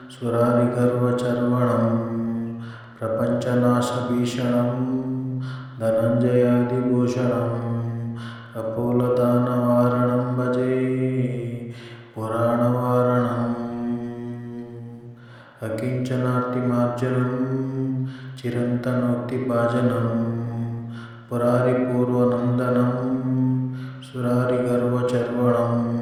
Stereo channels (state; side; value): identical; both; correlation 1.00